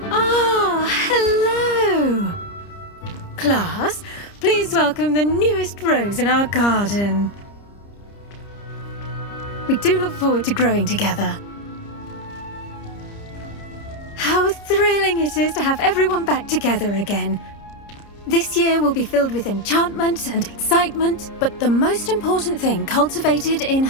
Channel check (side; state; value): right; late; 30 ms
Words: Ah, hello. Class, please welcome the newest rose in our garden. We do look forward to growing together. How thrilling it is to have everyone back together again. This year will be filled with enchantment and excitement, but the most important thing cultivated in